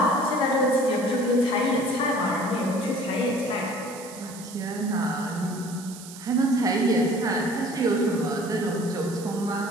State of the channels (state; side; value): noise; right; hiss, 15 dB below the sound